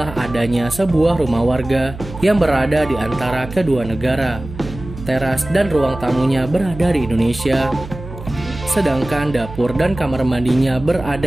adanya sebuah rumah warga yang berada di antara kedua negara. Teras dan ruang tamunya berada di Indonesia, sedangkan dapur dan kamar mandinya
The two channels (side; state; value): right; noise; hum, 13 dB below the sound